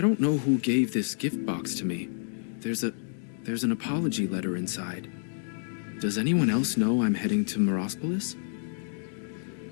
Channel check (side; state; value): right; silent; digital silence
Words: don't know who gave this gift box to me. There's an apology letter inside. Does anyone else know I'm heading to Morospolis?